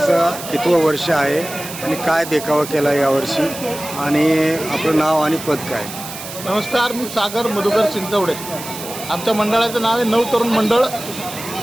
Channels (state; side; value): noise; right; hiss, 11 dB below the sound